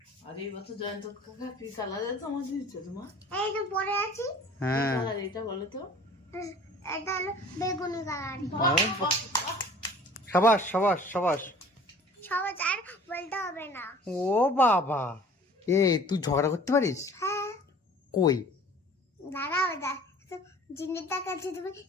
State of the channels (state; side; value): normal; both; correlation 0.47